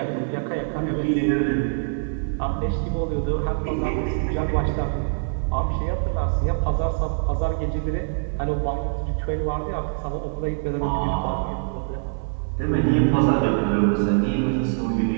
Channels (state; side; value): silent; left; 63 dB below the other